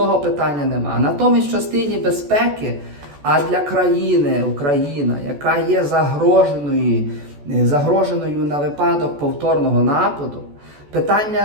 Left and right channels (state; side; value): late; left; 14 ms